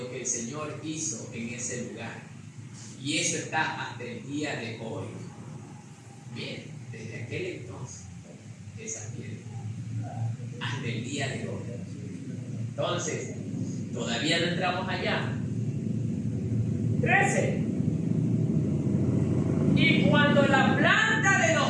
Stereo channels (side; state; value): both; identical; correlation 1.00